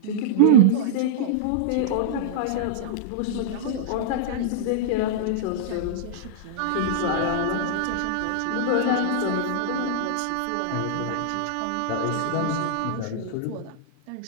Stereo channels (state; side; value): different; both; correlation -0.02